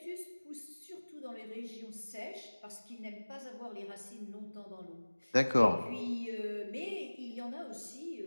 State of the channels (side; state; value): both; inverted; correlation -1.00